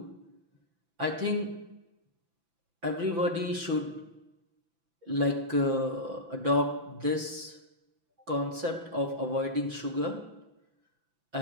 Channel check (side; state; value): left; late; 6.0 ms